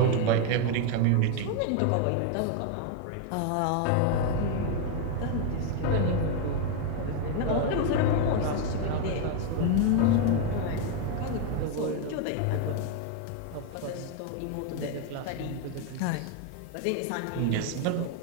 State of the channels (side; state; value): both; different; correlation 0.01